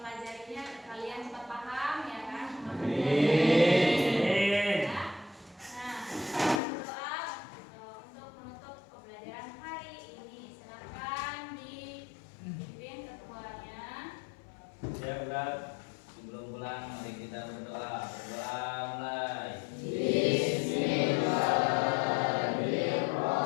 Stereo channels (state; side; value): drops out; right; at 6.6 s